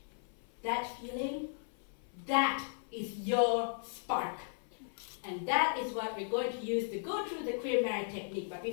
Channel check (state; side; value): silent; right; 54 dB below the other